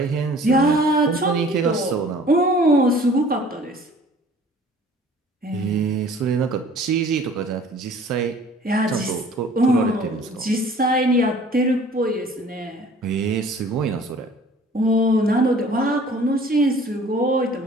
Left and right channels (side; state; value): both; normal; correlation 0.50